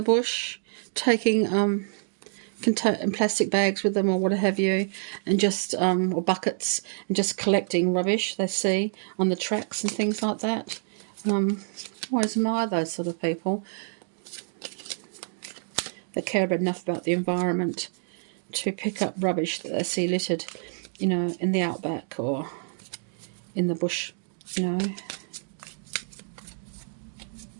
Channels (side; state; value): left; silent; digital silence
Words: bush taking plastic bags with them or what have you, and just or buckets, and just collecting rubbish they see on the tracks and things like that. I always admire those sort of people that care enough about the environment to pick up rubbish that they see littered, you know, in the outback or in the bush, you know,